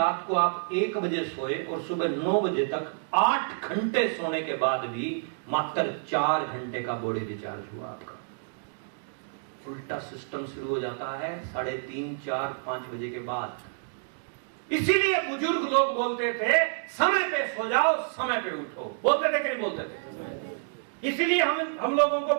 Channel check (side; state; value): left; silent; digital silence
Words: को आप 1 बजे सोए और सुबह 9 बजे तक 8 घंटे सोने के बाद भी मात्र 4 घंटे का बॉडी रिचार्ज हुआ आपका। उल्टा सिस्टम शुरू हो जाता है 3:30, 4, 5 बजे के बाद। इसीलिए बुजुर्ग लोग बोलते थे समय पे सो जाओ, समय पे उठो, बोलते थे कि नहीं बोलते थे। इसीलिए हम लोगों को